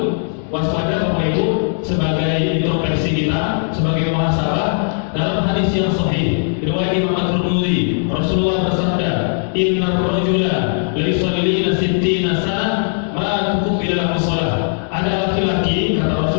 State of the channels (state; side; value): silent; right; 67 dB below the other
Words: waspada Bapak Ibu, sebagai introspeksi kita, sebagai muhasabah. Dalam hadis yang sahih riwayat Imam At-Tirmidzi, Rasulullah bersabda, "Innar rajula la yusalli 60 sana ma tuqbila lahu shalah." Ada laki-laki, kata